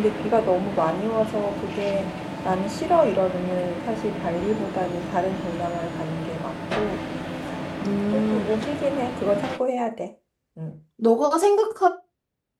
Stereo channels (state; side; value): identical; both; correlation 1.00